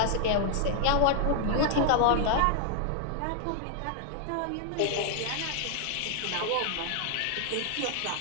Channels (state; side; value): different; both; correlation 0.00